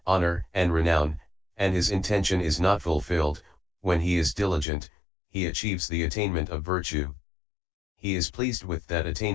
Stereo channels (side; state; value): right; drops out; at 4.7 s